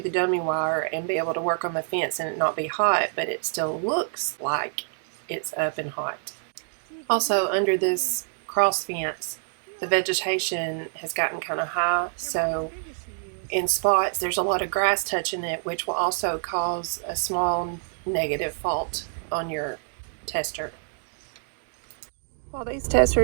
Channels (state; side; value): silent; left; digital silence